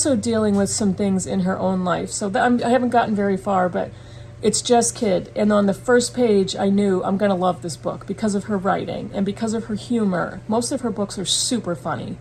dealing with some things in her own life. So I haven't gotten very far, but it's Jess Kidd. And on the first page, I knew I'm going to love this book because of her writing and because of her humor. Most of her books are super funny.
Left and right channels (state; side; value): identical; both; correlation 1.00